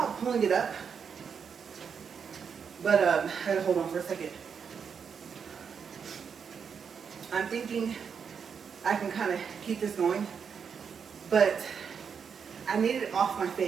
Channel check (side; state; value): left; quieter; 6.6 dB